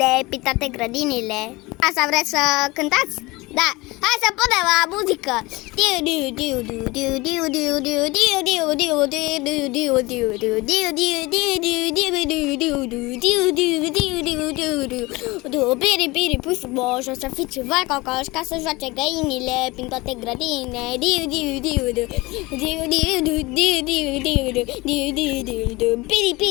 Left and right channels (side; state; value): right; quieter; 22.5 dB